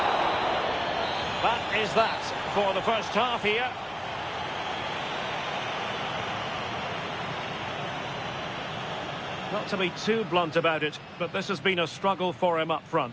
That is that for the first half here. Not to be too blunt about it, but this has been a struggle for him up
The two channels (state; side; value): identical; both; correlation 1.00